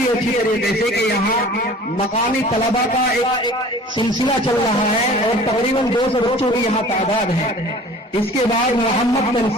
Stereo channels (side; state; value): both; normal; correlation 0.45